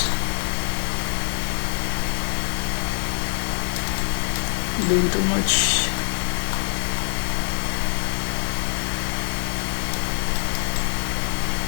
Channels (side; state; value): right; silent; 55 dB below the other